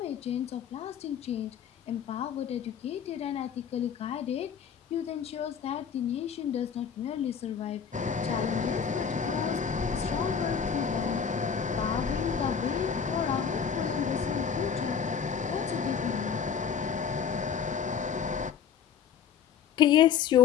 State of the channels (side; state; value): right; quieter; 7.4 dB